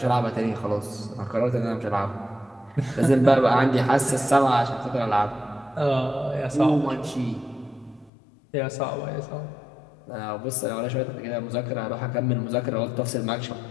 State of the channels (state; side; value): drops out; right; at 8.1 s